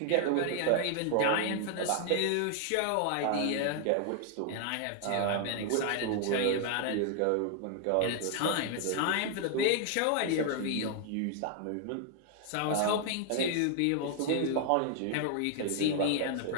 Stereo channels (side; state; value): both; different; correlation 0.00